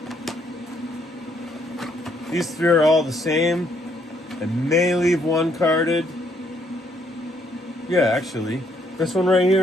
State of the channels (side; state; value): both; normal; correlation 0.70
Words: three are all the same. I may leave one carded. Yeah, actually. This one right